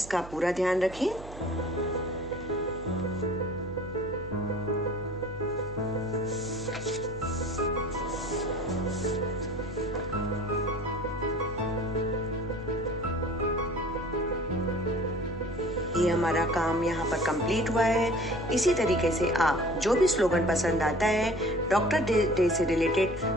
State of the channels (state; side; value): noise; right; hum, 15 dB below the sound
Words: का पूरा ध्यान रखें। ये हमारा काम यहाँ पर कंप्लीट हुआ है। इसी तरीके से आप जो भी स्लोगन पसंद आता है डॉक्टर डे से रिलेटेड,